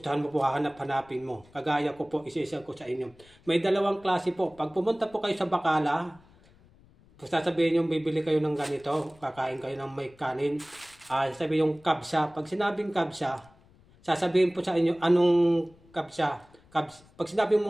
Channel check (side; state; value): left; noise; rumble, 28 dB below the sound